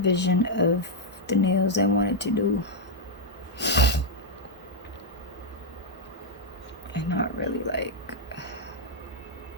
of the nails I wanted to do. And not really like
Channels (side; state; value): both; normal; correlation -0.02